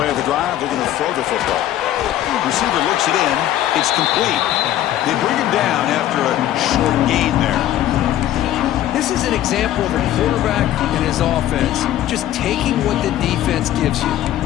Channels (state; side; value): quieter; right; 12.8 dB